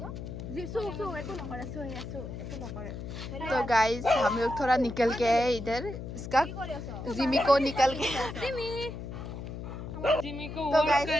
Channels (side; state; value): left; noise; hum, 8 dB below the sound